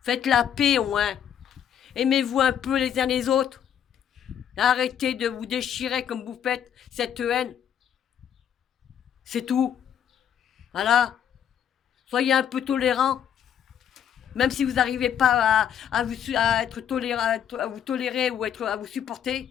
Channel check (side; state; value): right; quieter; 9.2 dB